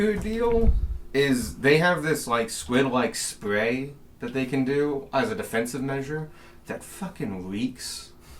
deal is they have this, like, squid-like spray that they can do as a defensive measure that fucking reeks.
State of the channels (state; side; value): identical; both; correlation 1.00